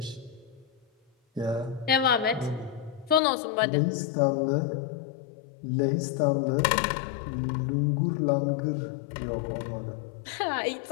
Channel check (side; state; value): right; drops out; at 3.2 s